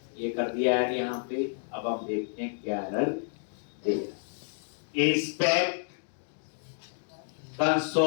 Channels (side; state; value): right; silent; digital silence